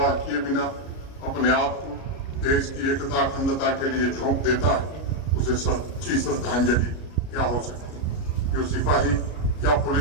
किए बिना अपने आप को देश की एकता, अखंडता के लिए झोंक देता है, उसे सच्ची श्रद्धांजलि क्या हो सकती है। जो सिपाही या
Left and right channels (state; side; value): late; right; 33 ms